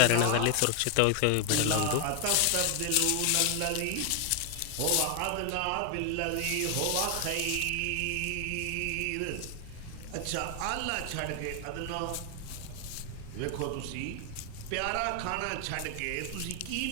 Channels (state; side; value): different; both; correlation 0.01